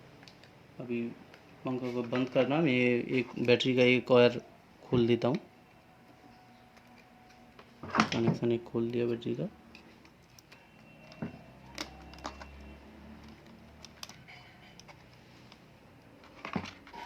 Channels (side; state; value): both; identical; correlation 1.00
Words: अभी पंखा को बंद करना, मैं एक बैटरी का एक वायर खोल देता हूँ। कनेक्शन एक खोल दिया बैटरी का।